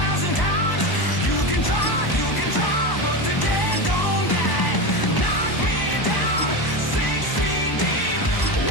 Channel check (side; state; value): right; late; 1.0 ms